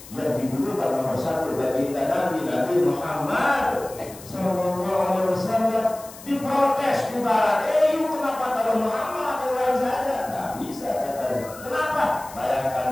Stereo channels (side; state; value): left; noise; hiss, 18 dB below the sound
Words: yang didulukan nomor 1 baginda Nabi Muhammad Sallallahu Alaihi Wasallam. Diprotes di barat, kenapa taruh Muhammad yang lain saja? Nggak bisa katanya. Kenapa? Bayangkan